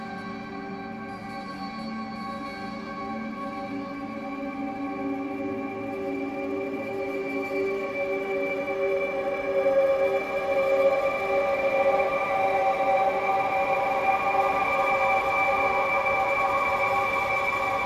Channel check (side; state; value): both; identical; correlation 1.00